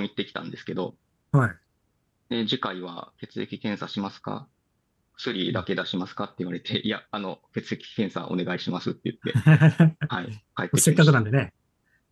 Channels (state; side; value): identical; both; correlation 1.00